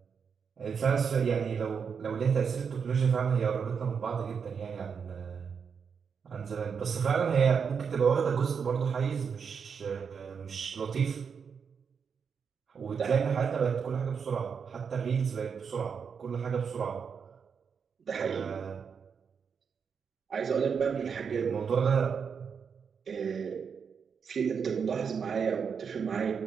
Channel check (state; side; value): quieter; left; 6.4 dB